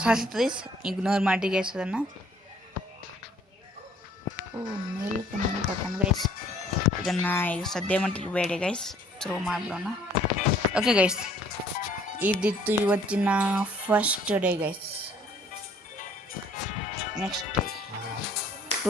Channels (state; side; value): normal; both; correlation 0.58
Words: ಗೈಸ್ ಇಗ್ನೋರ್ ಮಾಡಿ ಗೈಸ್ ಅದನ್ನು. ಮಿಲ್ಕ್ ಕೊಟ್ಟಣ ಗೈಸ್. ಇದನ್ನು ಈಗ ಸದ್ಯ ಮಟ್ಟಿಗೆ ಬೇಡ ಗೈಸ್, ಥ್ರೋ ಮಾಡಿಬಿಡೋಣ. ಓಕೆ ಗೈಸ್, ಇದಿತ್ತು ಇವತ್ತಿನ first day guys. Next